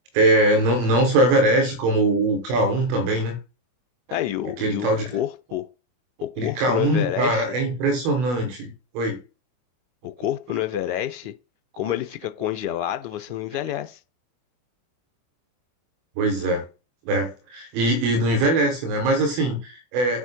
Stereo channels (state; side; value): late; left; 24 ms